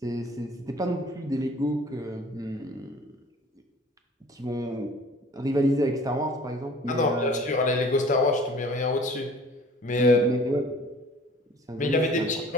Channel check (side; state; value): both; normal; correlation 0.49